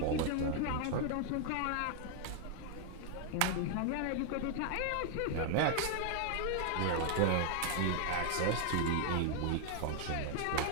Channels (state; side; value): different; both; correlation 0.00